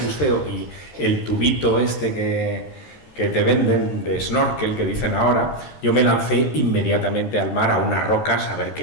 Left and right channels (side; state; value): right; late; 13 ms